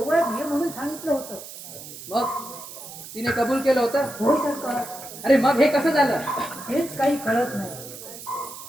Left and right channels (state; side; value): noise; right; hiss, 13 dB below the sound